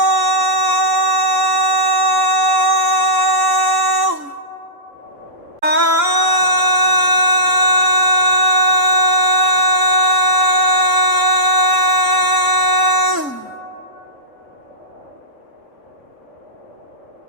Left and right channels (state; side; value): late; left; 3.7 ms